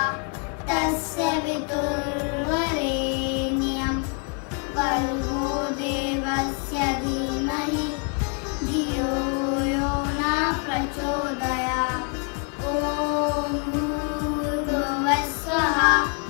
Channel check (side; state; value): right; quieter; 36.0 dB